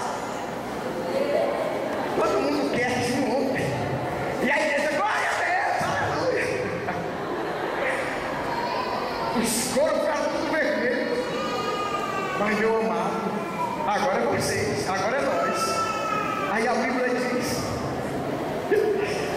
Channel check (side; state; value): both; identical; correlation 1.00